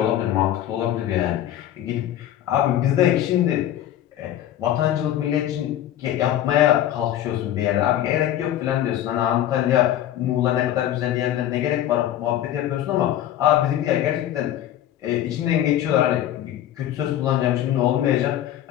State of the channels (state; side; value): quieter; right; 12.0 dB